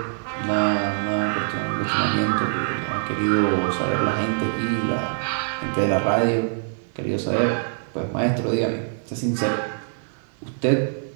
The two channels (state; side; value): silent; left; 63 dB below the other